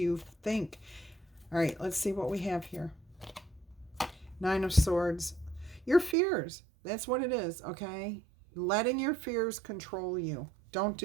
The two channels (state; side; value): drops out; left; at 6.2 s